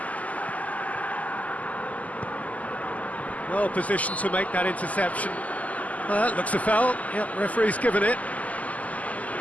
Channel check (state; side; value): late; right; 0.074 ms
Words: Well positioned to make that interception. Looks a foul. Yep, referee's given it.